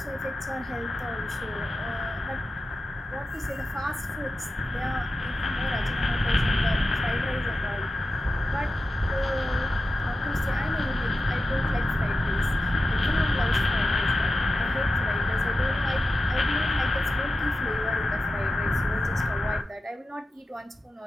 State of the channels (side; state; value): both; normal; correlation 0.90